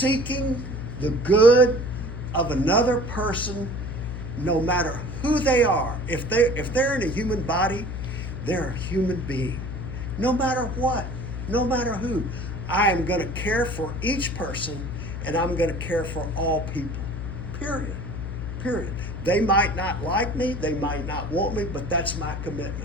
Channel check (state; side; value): noise; left; hum, 6 dB below the sound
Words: the good of another person, no matter who they are. If they're in a human body, they're a human being. No matter what, no matter who. I am going to care for each person, and I'm going to care for all people. Period. Period. They might not like me, they might not want me, but that's my